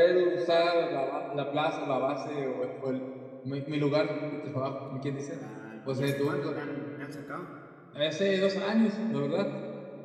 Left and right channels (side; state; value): both; identical; correlation 1.00